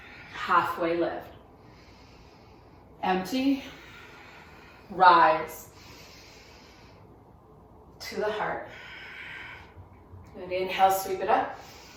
Halfway lift. Empty. Rise. To the heart. And inhale, sweep it up.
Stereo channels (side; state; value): both; identical; correlation 1.00